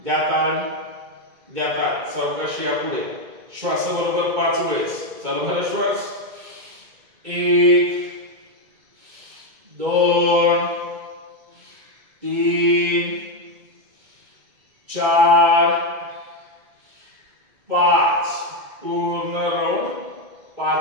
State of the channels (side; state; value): left; late; 2.2 ms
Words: द्या ताण, द्या ताण. सावकाश या पुढे. श्वासाबरोबर 5 वेळेस. चला भरा श्वास. 1 2 3 4 5. पूर्ण राऊंड